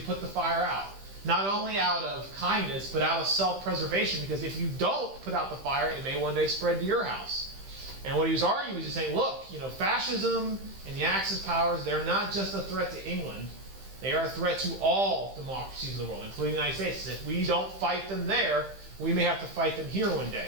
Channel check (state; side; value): late; left; 15 ms